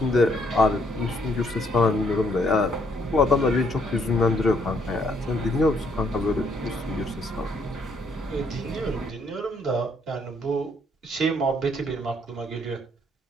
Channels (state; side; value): normal; both; correlation 0.69